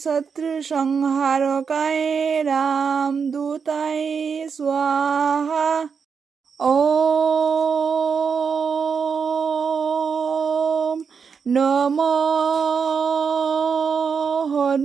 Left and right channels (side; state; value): left; quieter; 6.1 dB